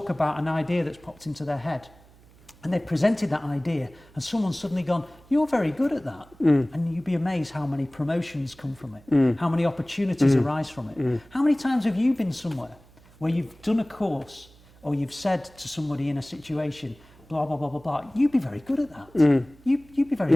about an idea that's popped into their head. And they presented that idea, and someone's suddenly gone, you're very good at that. And you'd be amazed how many promotions come from it, how many opportunities arise from it. How many times have you been somewhere where you've done a course, or you've said to somebody in a situation, blah, blah, blah, blah, blah, you'd be very good at that. You'd be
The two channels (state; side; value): noise; right; hum, 26 dB below the sound